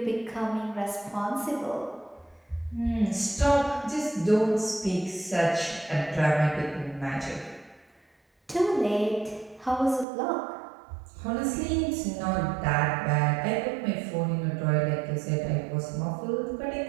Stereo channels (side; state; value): left; drops out; at 10.1 s